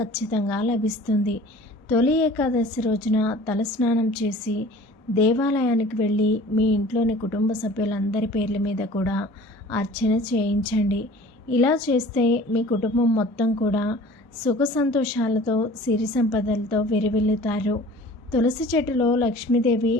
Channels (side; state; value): both; normal; correlation 0.45